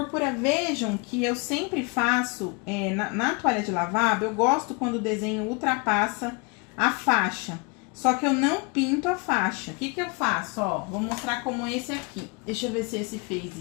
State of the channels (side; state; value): right; quieter; 31.3 dB